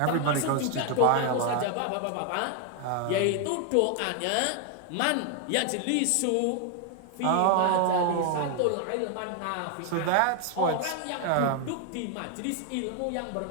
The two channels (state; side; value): different; both; correlation 0.00